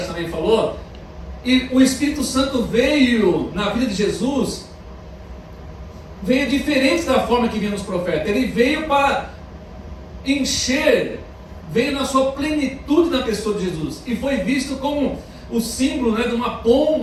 falou, e o Espírito Santo veio na vida de Jesus, veio diferente da forma que vinha nos profetas. Ele veio para encher, veio na sua plenitude na pessoa de Jesus, e foi visto como o símbolo, né, de uma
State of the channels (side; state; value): both; identical; correlation 1.00